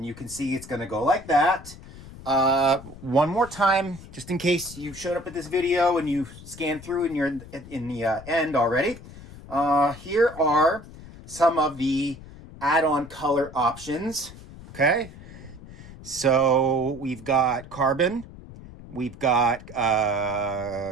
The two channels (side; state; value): left; noise; rumble, 17 dB below the sound